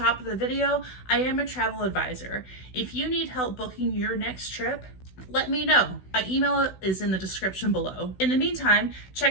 of the video, I am a travel advisor. If you need help booking your next trip, let me know. My email is in the description below. In the meantime,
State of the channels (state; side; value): late; right; 16 ms